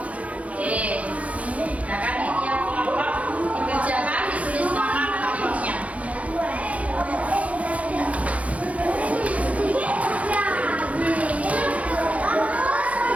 Oke. Nah kan ini yang kelompok dikerjakan, ditulis nama kelompoknya.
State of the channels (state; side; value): late; left; 0.066 ms